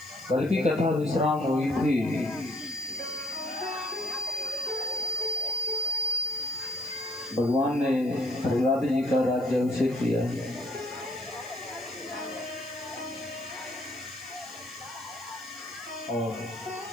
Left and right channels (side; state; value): right; noise; hiss, 23 dB below the sound